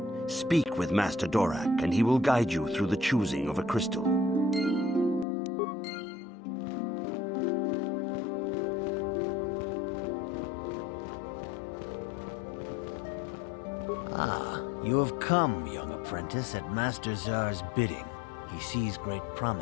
Speak with Master Dorak, and he will guide you through the choosing of a crystal. Ah, you have come, young apprentice, at Master Zar's bidding. He sees great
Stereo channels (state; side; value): drops out; right; at 5.2 s